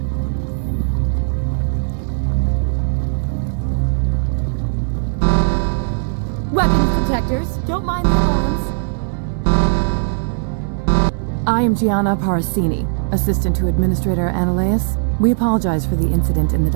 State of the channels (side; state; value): left; silent; 60 dB below the other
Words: Weapons protectors, don't mind the alarms. I am Gianna Parasini, assistant to Administrator Ananias. We apologize for the incident in the